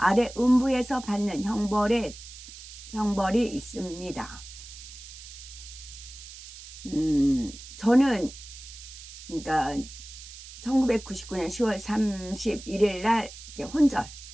음부에서 받는 형벌이 있습니다. 저는 그러니까 1999년 10월 31일 날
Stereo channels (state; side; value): noise; right; hiss, 15 dB below the sound